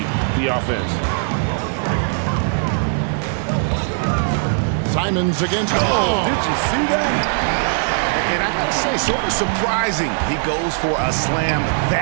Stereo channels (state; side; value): silent; left; 66 dB below the other